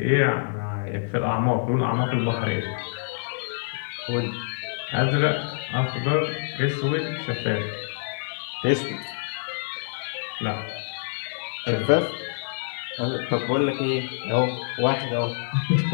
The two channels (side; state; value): right; silent; digital silence